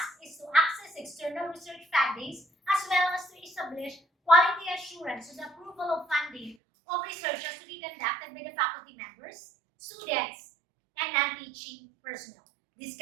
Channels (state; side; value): drops out; left; at 6.6 s